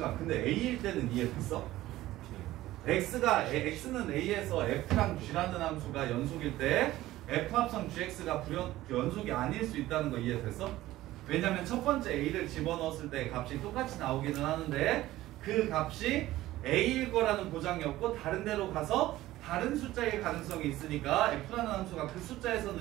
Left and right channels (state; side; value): quieter; left; 15.9 dB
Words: 근데 A일 때는 이해됐어? X는 A에서 F랑 G라는 함수가 연속일 때 F 합성 GX가 연속이 아닐 수 있다는 거 이해됐어? 왜냐면 첫 번째 A를 집어넣었을 때 값이 똑같이 나오기는 하는데 그 값이 A일 거라는 보장이 없고 다른 데로 가서 다른 숫자일 가능성이 있으니까 F라는 함수가 그